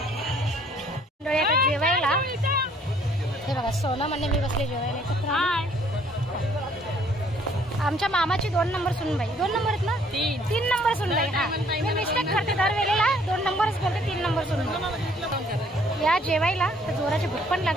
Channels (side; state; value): both; normal; correlation 0.62